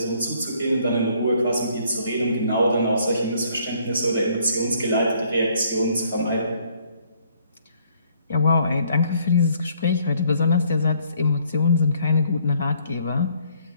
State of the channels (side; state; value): both; inverted; correlation -0.65